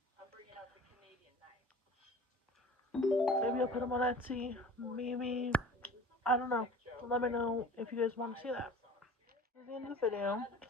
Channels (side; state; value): both; normal; correlation 0.43